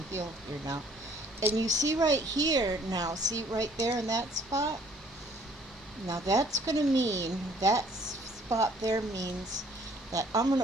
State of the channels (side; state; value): both; normal; correlation 0.59